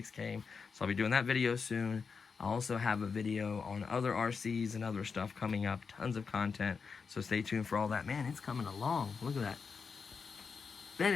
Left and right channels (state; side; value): quieter; right; 5.4 dB